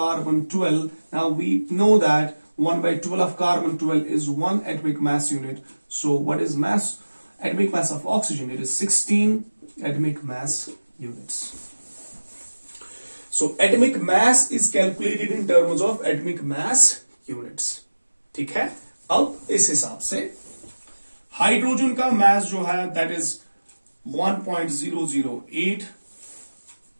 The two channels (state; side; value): inverted; both; correlation -1.00